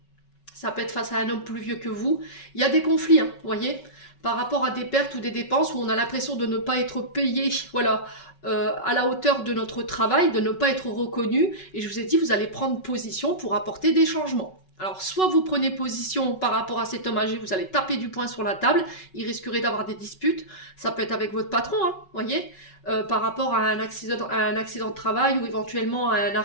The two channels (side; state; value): right; late; 5.3 ms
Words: Ça peut être face à un homme plus vieux que vous. Il y a des conflits, hein, vous voyez, par rapport à des pertes ou des dépenses où on a l'impression de ne pas être payé, voilà, à la hauteur de notre travail, de ne pas être reconnu. Et je vous ai dit, vous allez prendre position pour apporter des changements. Alors, soit vous prenez position par rapport à cet homme âgé, vous allez taper du poing sur la table, il risquerait d'avoir des disputes, ça peut être avec votre patron, hein, voyez, par rapport à un accident de travail ou éventuellement à un